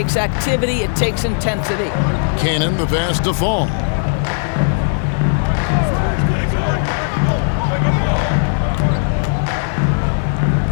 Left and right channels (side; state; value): right; silent; 61 dB below the other